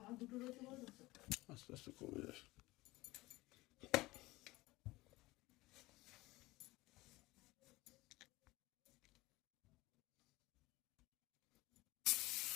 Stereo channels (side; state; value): right; quieter; 20.1 dB